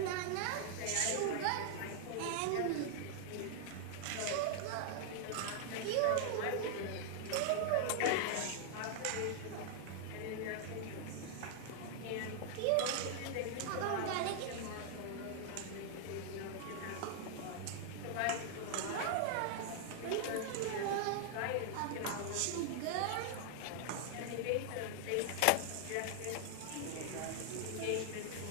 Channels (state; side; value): different; both; correlation 0.00